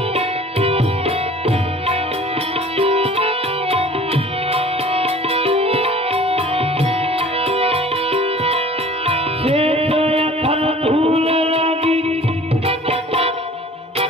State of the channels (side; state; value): both; normal; correlation 0.47